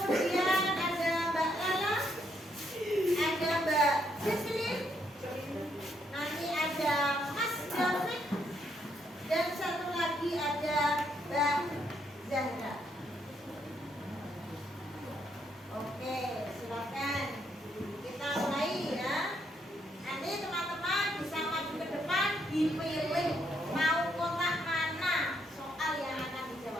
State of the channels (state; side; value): normal; both; correlation 0.74